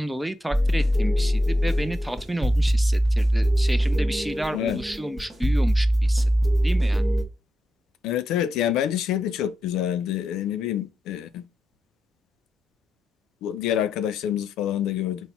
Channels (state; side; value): normal; both; correlation 0.85